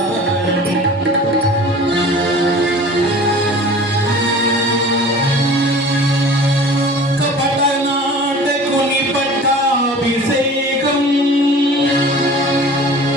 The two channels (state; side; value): normal; both; correlation 0.42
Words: కపట నాటకుని పట్టాభిషేకం